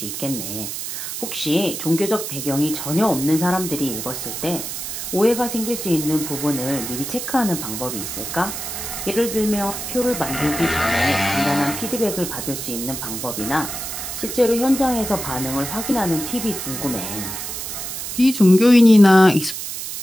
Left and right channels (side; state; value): right; noise; hiss, 6 dB below the sound